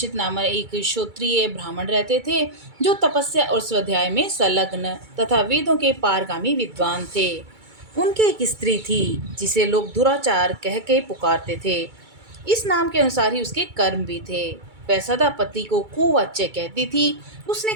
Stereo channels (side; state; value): left; late; 2.3 ms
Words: नामक एक क्षत्रिय ब्राह्मण रहते थे, जो तपस्या और स्वाध्याय में संलग्न तथा वेदों के पारगामी विद्वान थे। उनकी एक स्त्री थी, जिसे लोग दुराचार कह के पुकारते थे। इस नाम के अनुसार ही उसके कर्म भी थे। वह सदा पति को कुवाच्य कहती थी। उसने